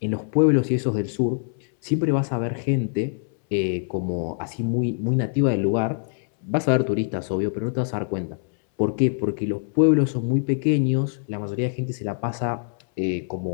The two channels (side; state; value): right; silent; 63 dB below the other